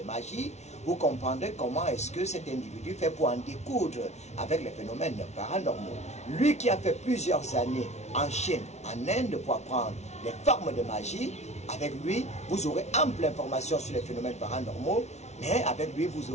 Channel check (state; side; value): late; right; 0.32 ms